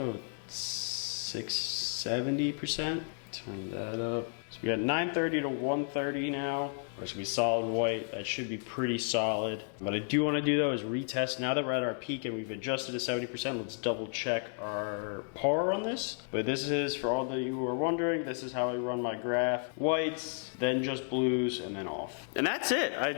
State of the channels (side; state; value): right; silent; 56 dB below the other